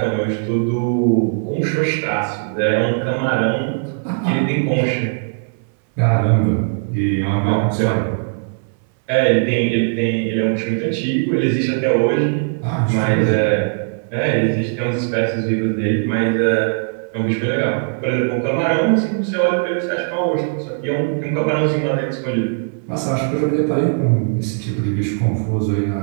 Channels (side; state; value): left; silent; 59 dB below the other